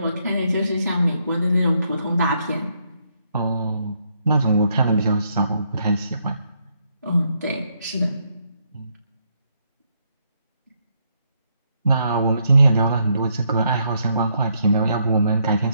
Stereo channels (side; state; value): both; inverted; correlation -0.75